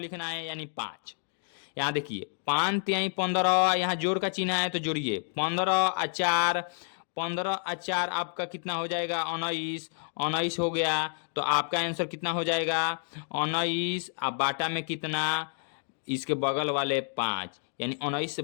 है, यानी 5। यहाँ देखिए 5 तिहाई 15, यहाँ जोड़ का चिन्ह है तो जोड़िए 15 और 4, 15 और 4 आपका कितना हो जाएगा? 19, 19 हो गया। तो आपका आंसर कितना हो जाएगा? 19। अब बाटा में कितना? इसके बगल वाले 5, यानी 19 से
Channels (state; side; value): silent; right; digital silence